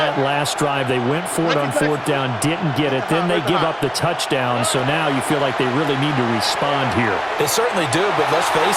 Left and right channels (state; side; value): identical; both; correlation 1.00